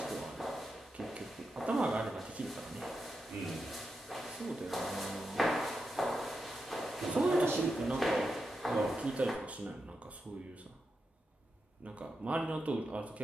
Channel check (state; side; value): normal; both; correlation 0.87